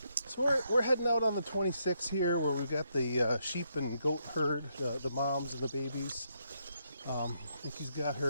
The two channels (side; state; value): both; inverted; correlation -0.77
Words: So we're heading out on the 26th here, where we've got the sheep and goat herd, the moms and the babies. Nikki's got